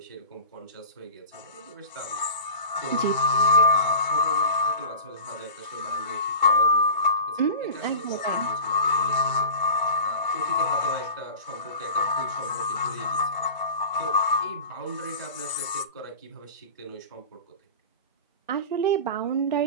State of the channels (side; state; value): both; inverted; correlation -0.36